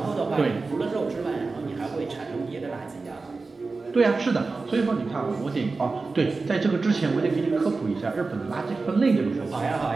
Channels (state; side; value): quieter; left; 3.9 dB